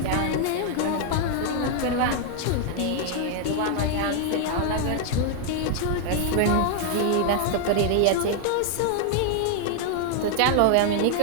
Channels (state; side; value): different; both; correlation 0.00